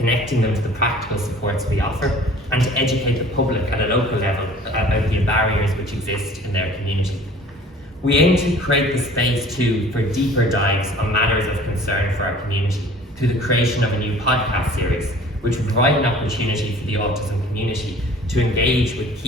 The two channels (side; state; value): both; normal; correlation 0.49